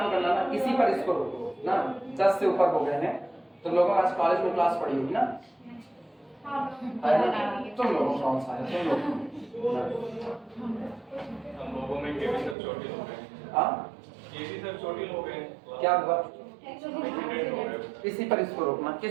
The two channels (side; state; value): left; drops out; at 12.6 s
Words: करना ना, इसी पर इसको रोको ना, 10 से ऊपर हो गए हैं। तुम लोगों आज कॉलेज में क्लास पढ़ी होगी ना, तुम लोगों कौन सा है, तुम लोग हम लोगों में केवी सर छोटे हो गए। हाँ केवी सर छोटे हो गए, क्या हुआ? एक्सीडेंट हो गए। इसी पर इसको रोकना,